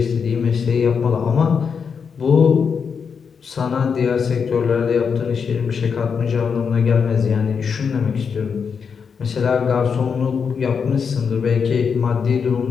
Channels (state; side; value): quieter; right; 6.2 dB